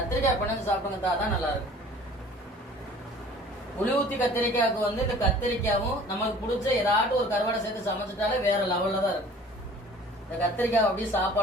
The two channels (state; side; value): normal; both; correlation 0.48